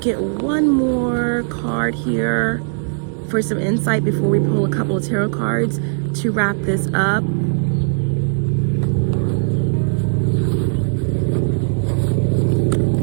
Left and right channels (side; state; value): left; silent; 67 dB below the other